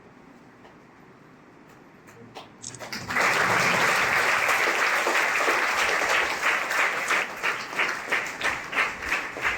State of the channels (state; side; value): identical; both; correlation 1.00